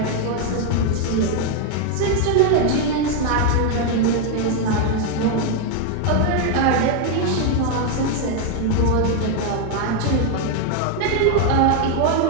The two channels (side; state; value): both; different; correlation 0.01